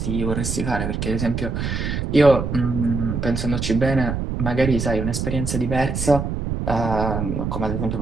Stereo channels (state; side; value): noise; right; rumble, 2 dB below the sound